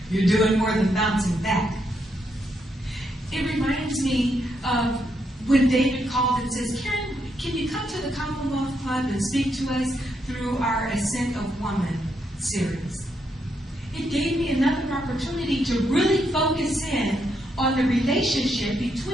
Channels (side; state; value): both; normal; correlation 0.79